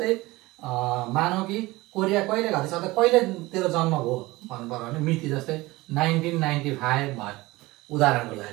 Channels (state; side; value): quieter; left; 20.4 dB